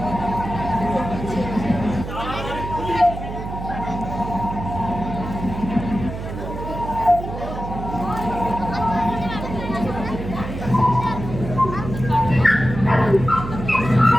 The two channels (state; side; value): noise; right; hum, 8 dB below the sound